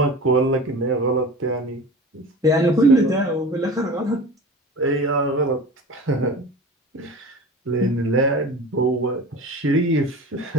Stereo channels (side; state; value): both; normal; correlation 0.35